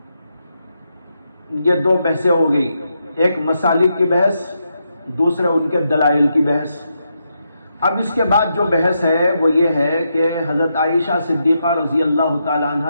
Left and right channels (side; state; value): both; inverted; correlation -0.83